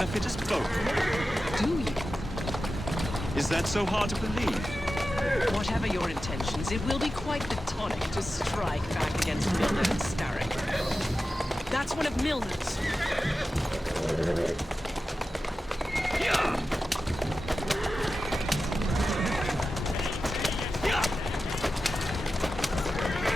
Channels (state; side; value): normal; both; correlation 0.93